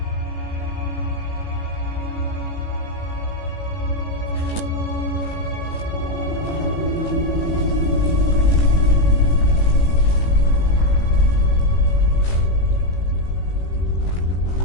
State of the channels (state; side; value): late; right; 18 ms